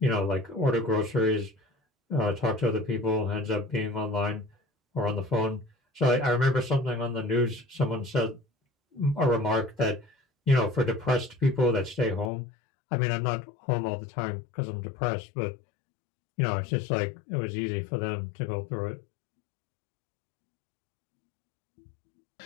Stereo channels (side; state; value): right; drops out; at 12.3 s